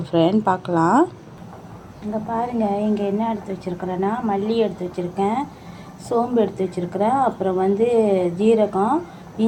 ஃப்ரெண்ட், பார்க்கலாம். இங்கே பாருங்கள், இங்கே என்ன எடுத்து வச்சுருக்கிறேன்னா, மல்லி எடுத்து வச்சுருக்கேன், சோம்பு எடுத்து வச்சுருக்கிறேன், அப்புறம் வந்து ஜீரகம்,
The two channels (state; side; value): identical; both; correlation 1.00